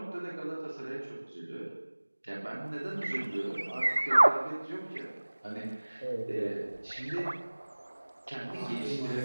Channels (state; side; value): inverted; both; correlation -1.00